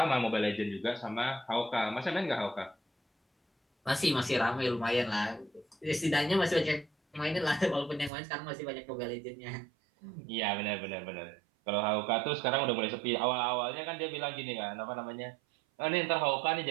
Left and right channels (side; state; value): left; drops out; at 8.1 s